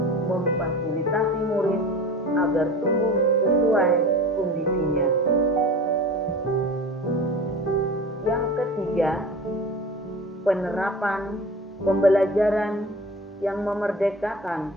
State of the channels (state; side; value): normal; both; correlation 0.36